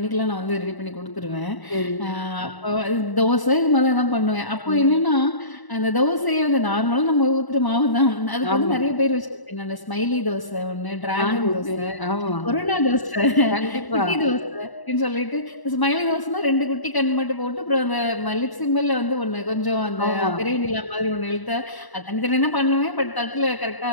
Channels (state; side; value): late; right; 1.0 ms